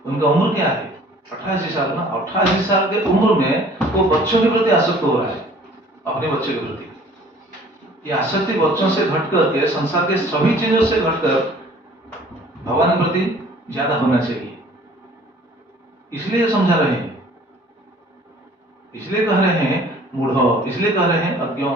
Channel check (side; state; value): both; normal; correlation 0.52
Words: उनका उम्र क्या है? 88 साल ना। 88 साल के उम्र में वो बच्चों के प्रति आसक्त हो रहा है, अपने बच्चे के प्रति। ये आसक्ति बच्चों से घटकर के, संसार के सभी चीजों से घटकर भगवान के प्रति ज्यादा होना चाहिए। इसलिए समझा रहे हैं, इसलिए कह रहे हैं मूढ़ो, इसलिए कह रहे हैं अज्ञो।